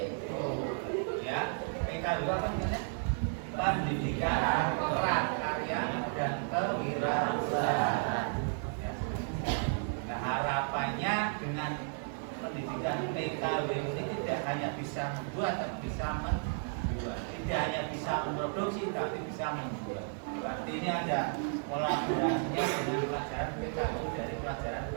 Ya, PKW apa namanya? Pendidikan prakarya dan kewirausahaan. Ya. Nah, harapannya dengan pendidikan PKW ini tidak hanya bisa membuat, tapi bisa menjual. Tidak hanya bisa memproduksi, tapi bisa membuat. Berarti ini ada kolaborasinya dengan pelajaran PKW dari pelajaran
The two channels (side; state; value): left; silent; 55 dB below the other